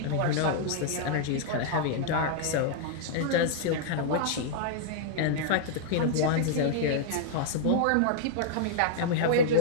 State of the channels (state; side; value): different; both; correlation -0.01